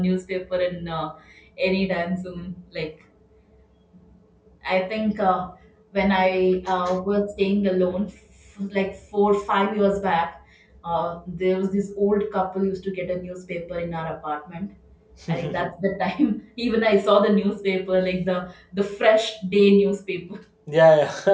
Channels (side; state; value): both; identical; correlation 1.00